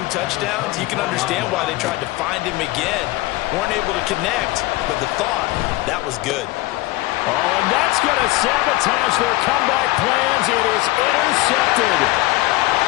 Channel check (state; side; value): quieter; right; 18.8 dB